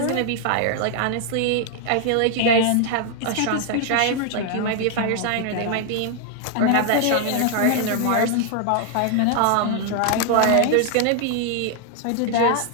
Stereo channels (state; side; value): different; both; correlation 0.00